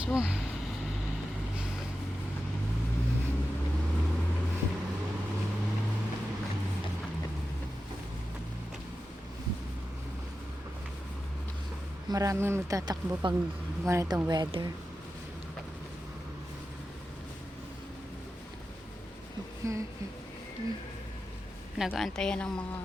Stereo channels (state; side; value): normal; both; correlation 0.91